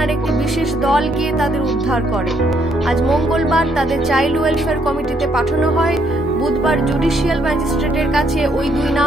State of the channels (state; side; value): normal; both; correlation 0.71